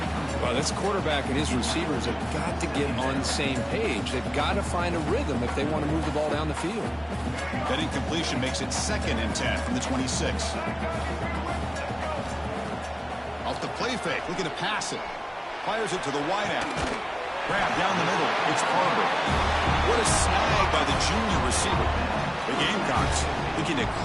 Well, this quarterback and his receivers have got to get on the same page. They've got to find a rhythm if they want to move the ball down the field. That incompletion makes it second and 10 from the 26. Off the play fake. Looking to pass it. Fires it to the wideout. Grab down the middle. It's Barber. What a snag by the junior receiver. The Gamecocks looking to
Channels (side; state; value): both; identical; correlation 1.00